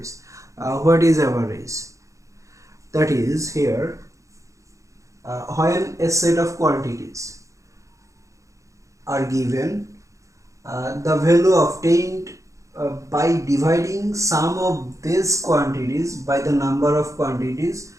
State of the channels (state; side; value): late; left; 0.15 ms